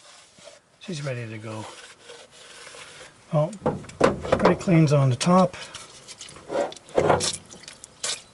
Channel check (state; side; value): identical; both; correlation 1.00